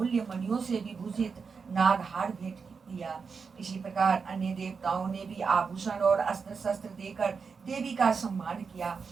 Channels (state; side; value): quieter; left; 5.4 dB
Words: मणियों से विभूषित नागहार भेंट किया। इसी प्रकार अन्य देवताओं ने भी आभूषण और अस्त्र शस्त्र देकर देवी का सम्मान किया।